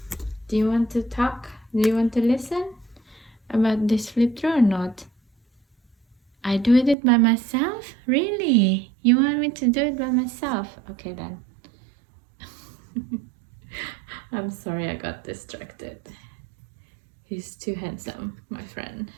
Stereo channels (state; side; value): drops out; left; at 7.0 s